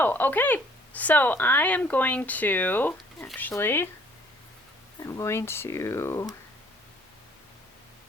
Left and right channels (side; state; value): both; normal; correlation 0.59